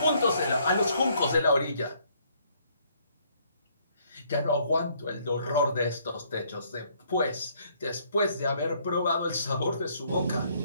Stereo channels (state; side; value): inverted; both; correlation -0.66